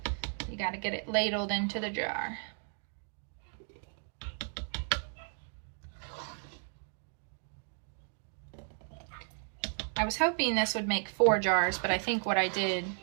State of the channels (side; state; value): left; silent; 55 dB below the other